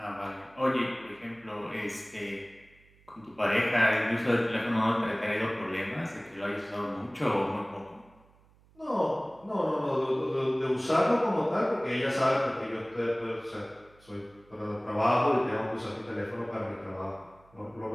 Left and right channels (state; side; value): noise; right; hum, 29 dB below the sound